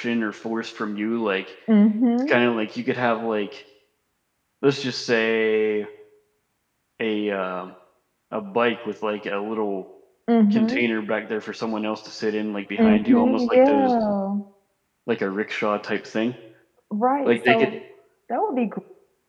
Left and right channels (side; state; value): both; identical; correlation 1.00